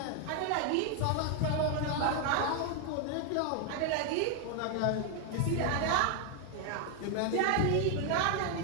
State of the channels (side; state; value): both; different; correlation 0.00